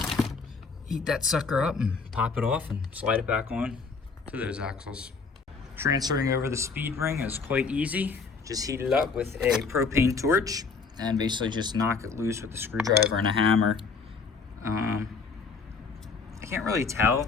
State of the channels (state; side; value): quieter; right; 4.8 dB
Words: Heat that sucker up and pop it off and slide it back on to those axles. Transferring over the speed ring is quite easy. Just heat it up with a propane torch and basically just knock it loose with a screwdriver and a hammer. I can't really tell.